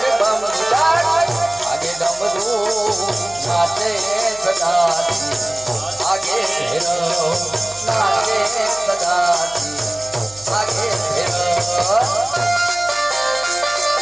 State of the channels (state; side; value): noise; right; hum, 25 dB below the sound